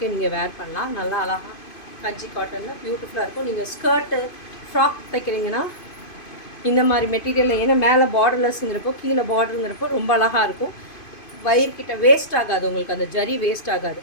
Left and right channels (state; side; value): late; right; 2.5 ms